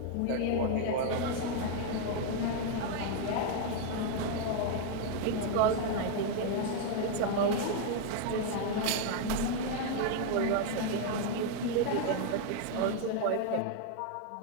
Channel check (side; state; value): both; different; correlation 0.00